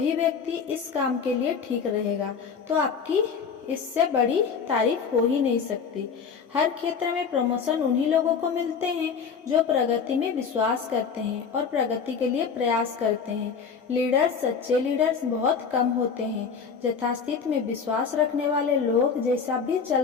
व्यक्ति इस काम के लिए ठीक रहेगा, तो आपकी इससे बड़ी तारीफ हो ही नहीं सकती। हर क्षेत्र में प्रमोशन उन्हीं लोगों को मिलते हैं जो प्रगति में विश्वास करते हैं और प्रगति के लिए प्रयास करते हैं। सच्चे लीडर्स बहुत कम होते हैं। यथास्थिति में विश्वास रखने वाले लोग जैसा भी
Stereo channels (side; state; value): right; quieter; 6.1 dB